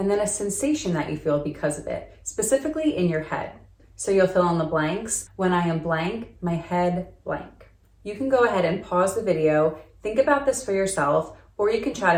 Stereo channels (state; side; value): identical; both; correlation 1.00